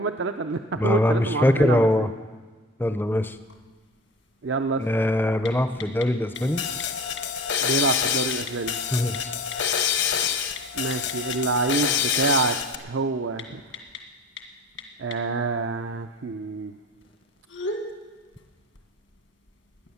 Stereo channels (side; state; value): both; normal; correlation 0.39